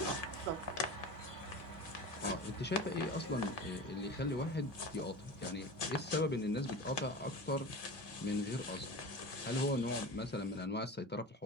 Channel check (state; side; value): normal; both; correlation 0.31